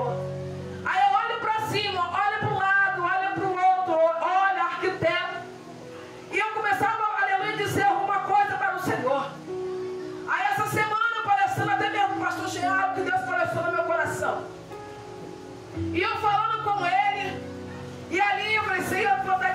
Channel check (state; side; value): identical; both; correlation 1.00